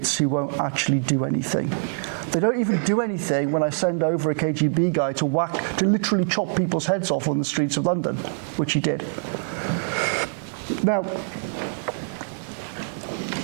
who won't actually do anything. They don't even do anything when I send over a KGB guy to literally chop people's heads off on the streets of London, which he did. Now,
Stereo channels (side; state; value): left; silent; digital silence